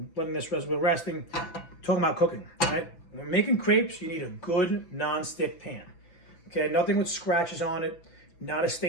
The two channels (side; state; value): right; late; 5.9 ms